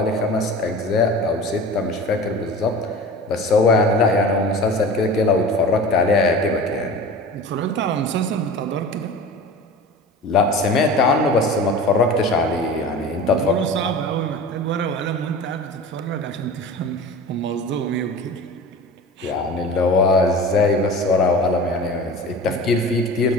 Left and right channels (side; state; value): both; normal; correlation 0.36